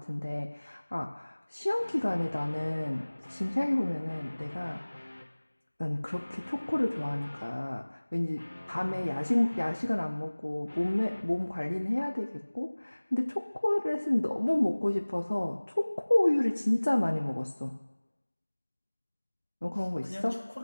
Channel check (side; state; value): both; inverted; correlation -1.00